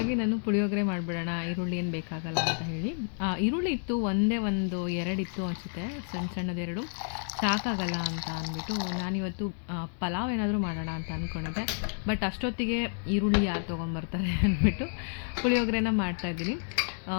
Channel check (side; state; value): right; silent; 58 dB below the other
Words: ನಾನು ಪುಳಿಯೋಗರೆ ಮಾಡಿಬಿಡೋಣ, ಈರುಳ್ಳಿ ಏನು ಬೇಕಾಗಲ್ಲ ಅಂತ ಹೇಳಿ. ಈರುಳ್ಳಿ ಇತ್ತು, ಎರಡು ಇತ್ತು ಅನಿಸುತ್ತೆ, ಸಣ್ಣದೆರಡು ಸಾಕಾಗಲ್ಲ ಅಂತ ಅಂದ್ಬಿಟ್ಟು ನಾನಿವತ್ತು ಪಲಾವ್ ಏನಾದರೂ ಮಾಡೋಣ ಅಂತ ಅಂದ್ಕೊಂಡಿದ್ದೆ. ಬಟ್ ಅಷ್ಟೊತ್ತಿಗೆ ಈರುಳ್ಳಿ ಯಾರು ತೊಗೊಂಬರ್ತಾರೆ ಅಂದ್ಬಿಟ್ಟು ಪುಳಿಯೋಗರೆನ ಮಾಡ್ತಾಯಿದ್ದೀನಿ.